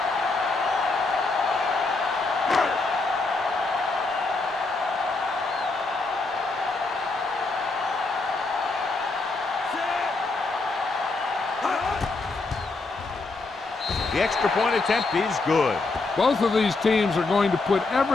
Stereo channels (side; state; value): right; quieter; 3.6 dB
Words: The extra point attempt is good. Both of these teams are going to put